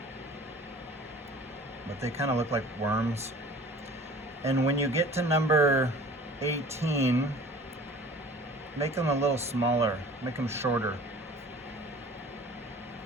But they kind of look like worms. And when you get to number 18, make them a little smaller, make them shorter.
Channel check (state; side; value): normal; both; correlation 0.46